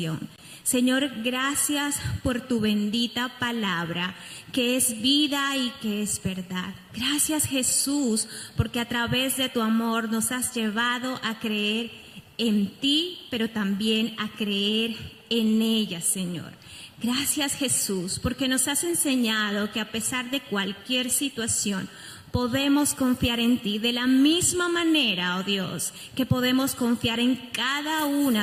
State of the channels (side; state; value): both; identical; correlation 1.00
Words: Señor, gracias por tu bendita palabra, que es vida y que es verdad. Gracias, Jesús, porque a través de tu amor nos has llevado a creer en ti, pero también a creer en ella, Señor. Gracias, Jesús, porque nos has enseñado que a pesar de cualquier situación, podemos confiar en ti de la misma manera, oh Dios, que podemos confiar en cada